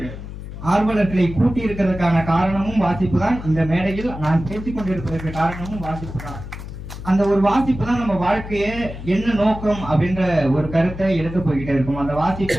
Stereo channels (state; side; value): noise; left; hum, 10 dB below the sound